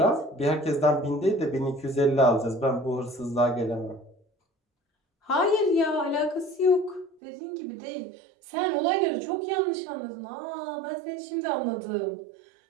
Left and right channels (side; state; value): left; drops out; at 7.2 s